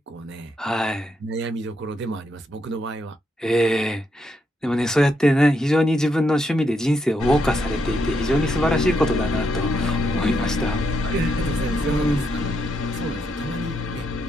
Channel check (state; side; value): normal; both; correlation 0.79